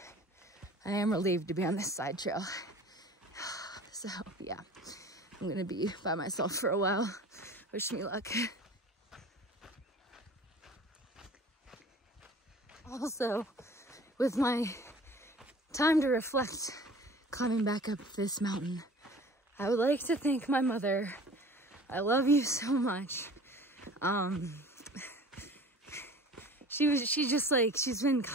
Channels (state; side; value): normal; both; correlation 0.44